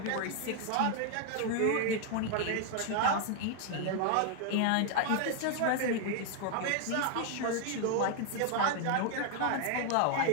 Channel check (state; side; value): different; both; correlation 0.00